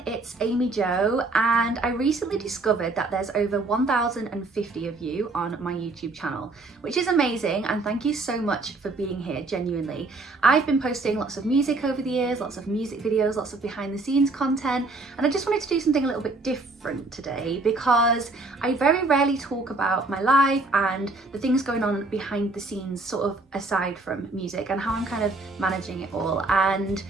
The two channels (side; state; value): left; quieter; 3.3 dB